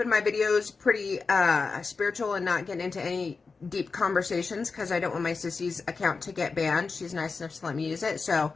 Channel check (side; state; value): right; quieter; 4.5 dB